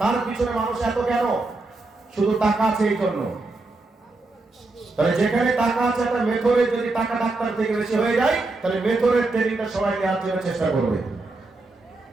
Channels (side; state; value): left; quieter; 3.2 dB